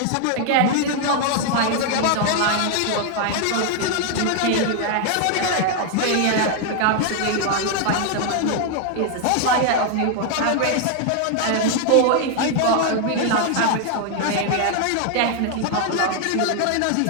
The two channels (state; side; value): different; both; correlation 0.00